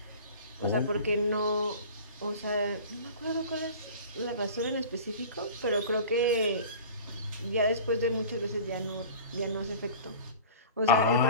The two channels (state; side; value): inverted; both; correlation -0.40